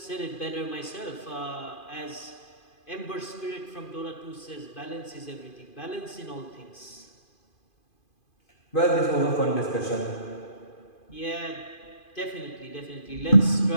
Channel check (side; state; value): right; late; 2.5 ms